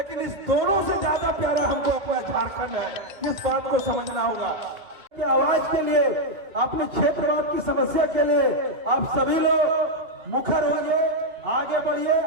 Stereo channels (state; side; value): late; left; 2.2 ms